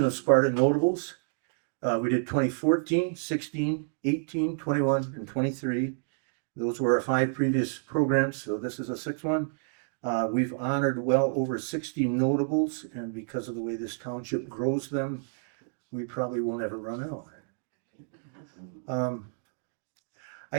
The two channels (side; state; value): left; silent; digital silence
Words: of Sparta Notables. We did 2014, 16, 18, 21, and 23. Those were our 5 previous programs, so this is a 6th one. We've honored well over 60 notables, and because of the way this township grows them, we probably won't ever run out. I